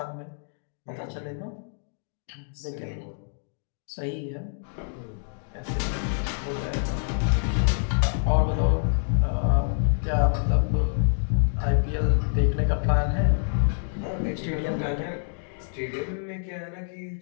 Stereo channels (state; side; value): silent; right; digital silence